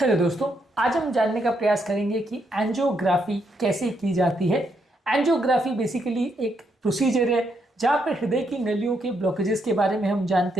Hello दोस्तों, आज हम जानने का प्रयास करेंगे कि एंजियोग्राफी कैसे की जाती है। एंजियोग्राफी बेसिकली एक प्रोसीजर है जहाँ पर हृदय की नलियों के ब्लॉकेजेस के बारे में हम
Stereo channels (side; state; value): both; normal; correlation 0.77